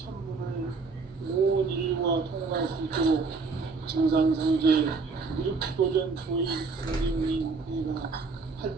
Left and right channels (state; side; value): quieter; left; 4.3 dB